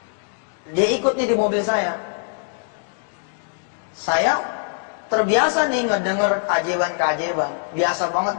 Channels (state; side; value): silent; right; 63 dB below the other